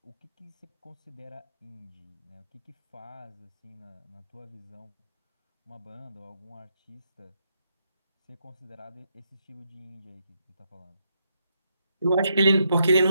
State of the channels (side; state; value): both; inverted; correlation -0.79